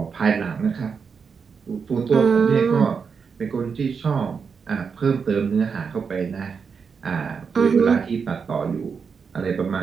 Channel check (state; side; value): quieter; left; 5.9 dB